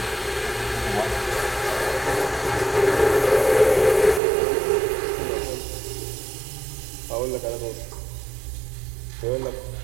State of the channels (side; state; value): left; drops out; at 4.2 s